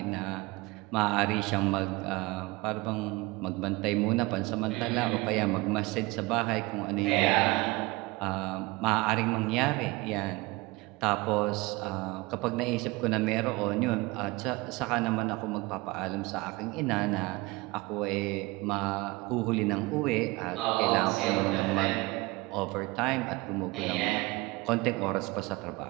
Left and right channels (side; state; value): left; quieter; 22.8 dB